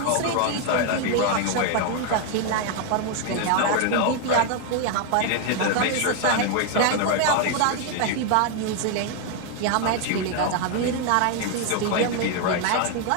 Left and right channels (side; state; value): both; different; correlation 0.01